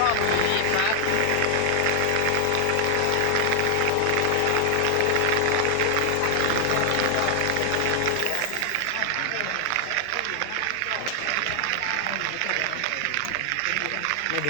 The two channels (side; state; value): both; different; correlation 0.00